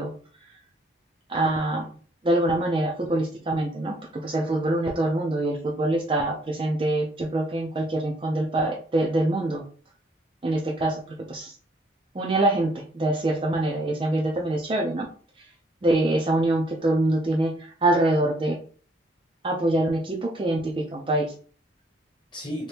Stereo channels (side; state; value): both; normal; correlation 0.65